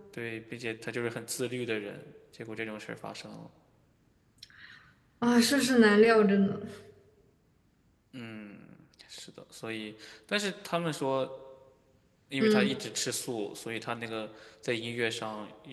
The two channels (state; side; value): identical; both; correlation 1.00